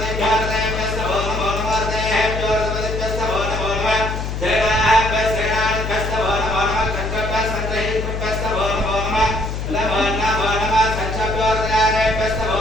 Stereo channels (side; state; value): left; noise; hum, 4 dB below the sound